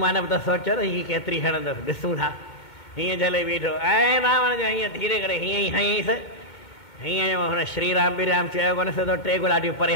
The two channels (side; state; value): right; late; 2.6 ms